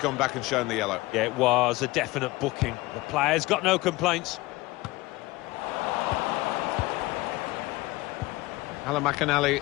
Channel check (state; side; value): quieter; right; 20.5 dB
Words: back and shown the yellow. Yeah, it was a definite booking. The player's got no complaints. Alan McInally,